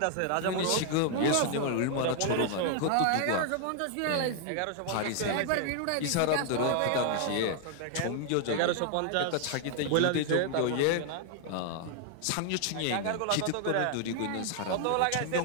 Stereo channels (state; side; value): different; both; correlation 0.00